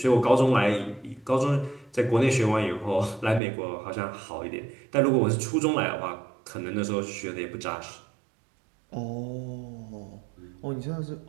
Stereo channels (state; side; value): drops out; left; at 3.4 s